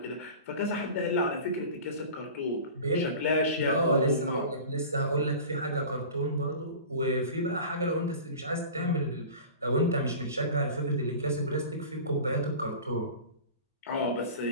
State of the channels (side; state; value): both; inverted; correlation -0.37